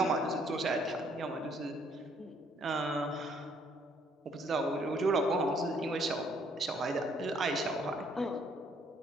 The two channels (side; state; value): both; normal; correlation 0.65